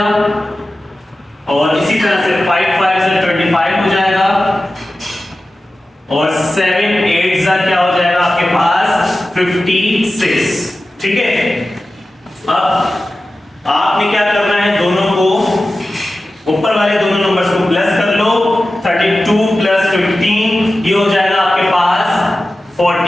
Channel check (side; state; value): both; normal; correlation 0.95